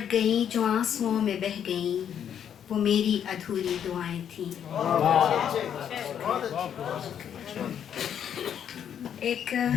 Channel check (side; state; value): right; quieter; 8.9 dB